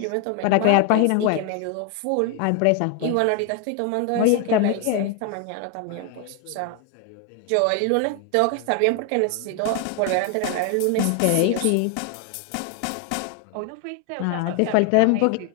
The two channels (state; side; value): different; both; correlation 0.01